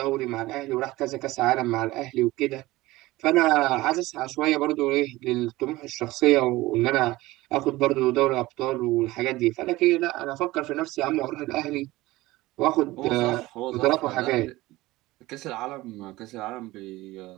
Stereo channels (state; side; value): quieter; left; 18.8 dB